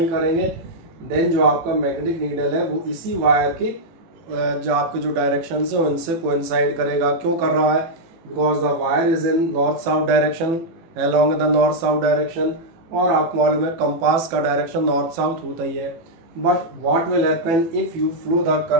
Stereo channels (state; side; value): late; left; 18 ms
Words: करेंगे, देन जो आपका मैग्नेटिक नीडल है वो इसी वायर के जो आपके जो डायरेक्शन है उनसे कोइंसाइड करेगा। क्यों कर रहा है? Because the wire is in north south direction, along the north south direction. और आपको मालूम है कंपास का डायरेक्शन नॉर्थ साउथ होता ही है। But what will happen if you flow the